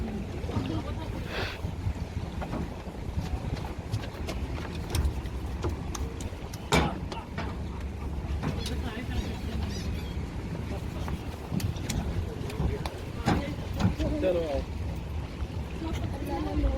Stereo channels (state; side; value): identical; both; correlation 1.00